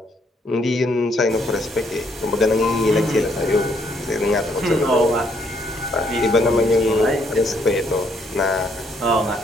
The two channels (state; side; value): normal; both; correlation 0.70